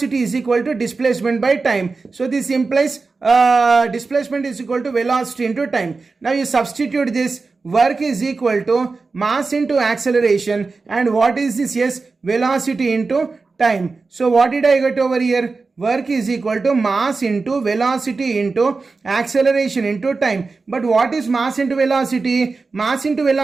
is equal to displacement by time. So this implies displacement is equal to velocity into time. Now you substitute this. Work is equal to mass into acceleration, and what is this? Yes, velocity into time. So what did I get over here? Work is equal to mass into velocity into acceleration into time. But what is mass into velocity? Mass into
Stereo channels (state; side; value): quieter; left; 4.1 dB